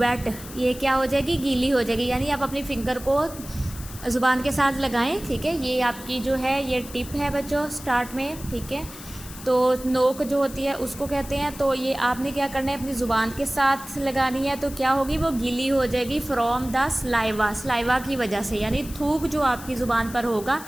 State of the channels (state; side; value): noise; left; hiss, 15 dB below the sound